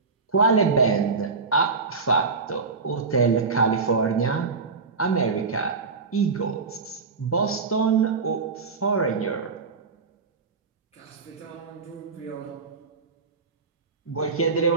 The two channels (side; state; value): left; quieter; 4.6 dB